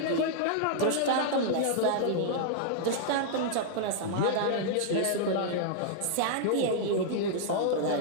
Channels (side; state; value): both; different; correlation -0.01